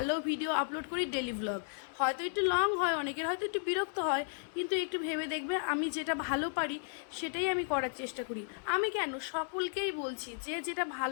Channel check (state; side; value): silent; right; digital silence